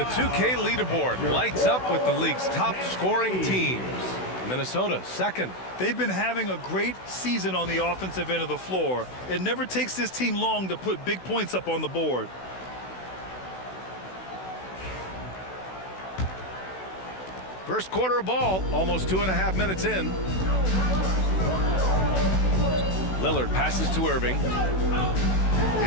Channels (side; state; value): right; late; 16 ms